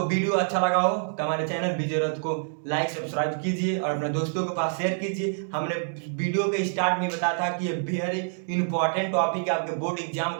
वीडियो अच्छा लगा हो तो हमारे चैनल विजय को लाइक सब्सक्राइब कीजिए और अपने दोस्तों के पास शेयर कीजिए। हमने वीडियो के स्टार्ट में बताया था कि ये वेरी इंपॉर्टेंट टॉपिक है आपके बोर्ड एग्जाम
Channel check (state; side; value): silent; left; 60 dB below the other